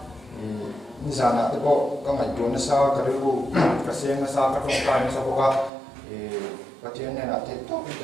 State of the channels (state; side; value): drops out; left; at 5.7 s